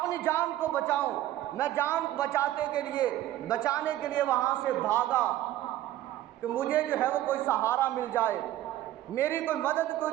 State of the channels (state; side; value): quieter; left; 14.1 dB